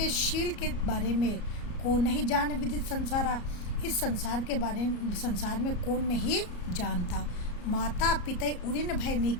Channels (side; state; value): right; late; 34 ms